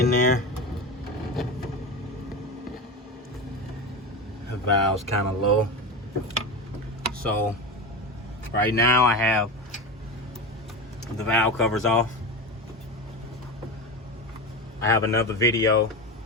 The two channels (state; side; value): normal; both; correlation 0.22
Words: there. The valve's kind of low. So right now I have the valve covers off. I have another video,